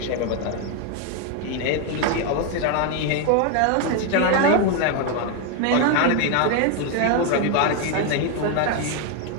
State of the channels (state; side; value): different; both; correlation 0.01